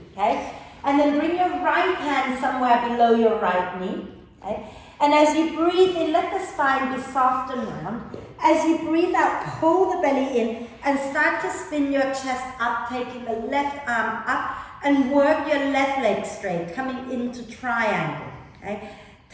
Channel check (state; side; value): identical; both; correlation 1.00